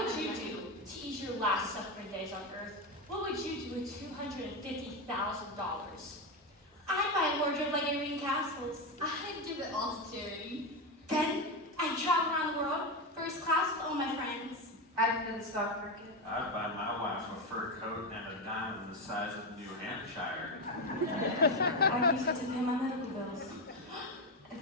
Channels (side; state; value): both; normal; correlation 0.12